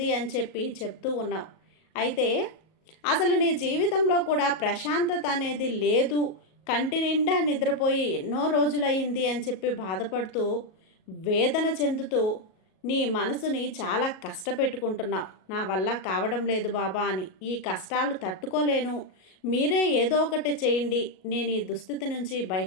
అని చెప్పి చెప్తూ ఉన్నావు. అయితే అసలు నీ జీవితంలో కూడా ప్రశాంతత అనేది లేదు, కంటి నిండా నిద్రపోయి ఎన్నో రోజులయ్యింది అని చెప్పి బాధపడుతూ వేదన చెందుతూ నీ మనసుని చాలా కష్టపెట్టుకుంటున్నావు. నా వల్ల కావడం లేదు బాబా అని, ఈ కష్టాలు తట్టుకోలేను, మీరే ఏదో ఒకటి చేయండి, నేను ఈ దుస్థితి నుంచి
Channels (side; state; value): right; late; 38 ms